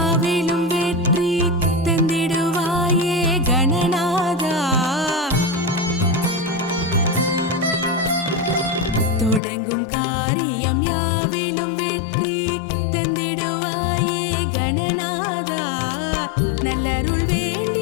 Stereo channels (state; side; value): drops out; right; at 9.4 s